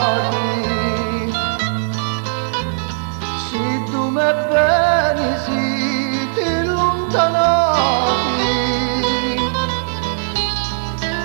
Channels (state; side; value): silent; left; 67 dB below the other